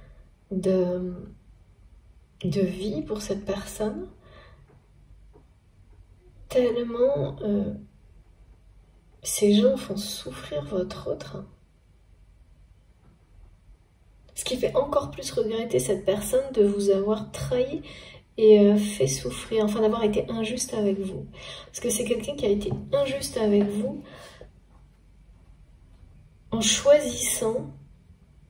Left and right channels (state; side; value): identical; both; correlation 1.00